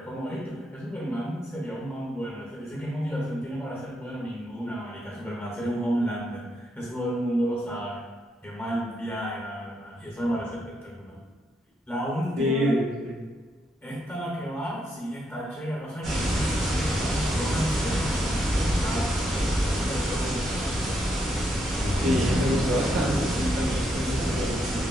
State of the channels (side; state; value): both; normal; correlation 0.78